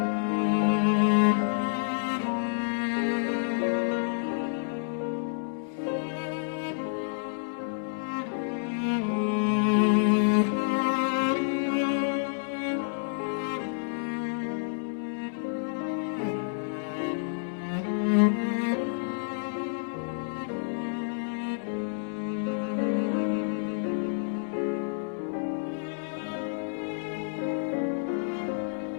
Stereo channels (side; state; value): right; silent; digital silence